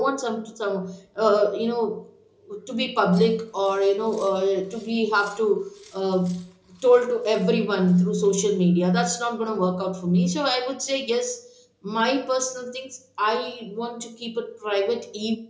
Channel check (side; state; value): both; identical; correlation 1.00